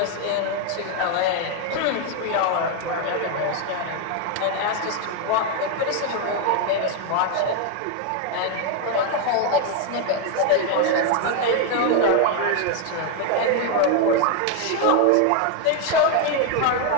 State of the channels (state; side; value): different; both; correlation 0.01